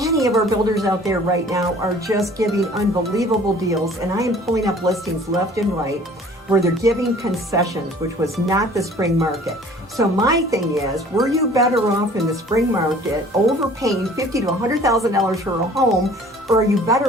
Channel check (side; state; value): both; normal; correlation 0.50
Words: of our builders out there right now are just giving unbelievable deals. And I am pulling up listings left and right where they're giving concessions, which was not the spring market. So my thing is, were you better off in the spring market overpaying $50,000 to $100,000 for a home, or are you